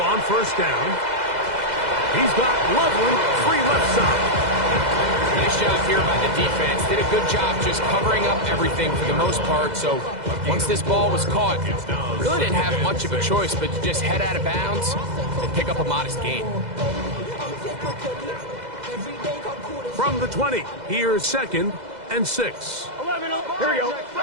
on 1st down. He's got Loveland free left side. Nice job here by the defense. Did a good job just covering up everything for the most part. So once this ball was caught, really didn't have much of a choice but to just head out of bounds and pick up a modest gain. From the 20, here's 2nd and 6. 11. Here we go.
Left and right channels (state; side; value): late; left; 2.0 ms